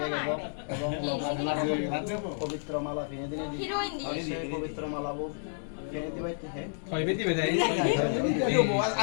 এবং পবিত্র মালা ফিনে দিনে দিয়ে পবিত্র মালা ফিনে দিবাইতে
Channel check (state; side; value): silent; right; digital silence